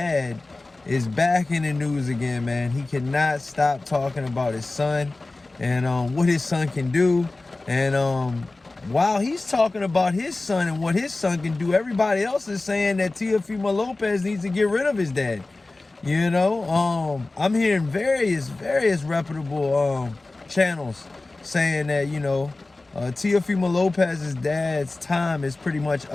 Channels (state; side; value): quieter; right; 3.2 dB